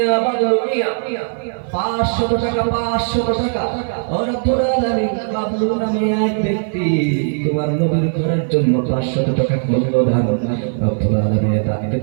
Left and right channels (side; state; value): left; silent; 56 dB below the other